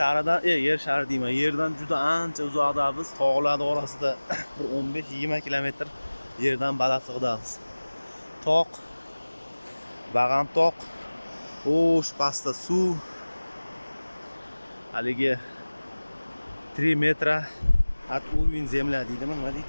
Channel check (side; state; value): both; inverted; correlation -1.00